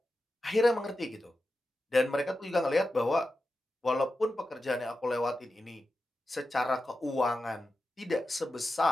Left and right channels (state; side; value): normal; both; correlation 0.91